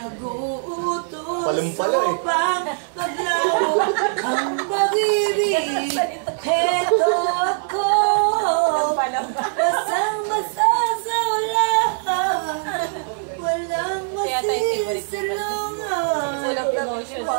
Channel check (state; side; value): silent; left; 63 dB below the other